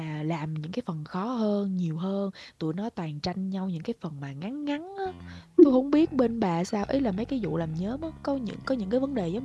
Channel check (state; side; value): identical; both; correlation 1.00